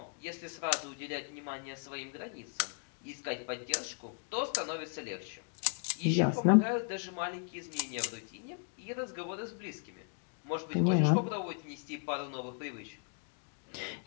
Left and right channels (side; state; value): right; quieter; 39.6 dB